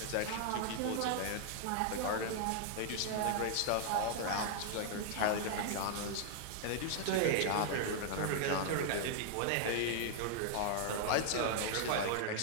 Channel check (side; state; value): both; different; correlation -0.01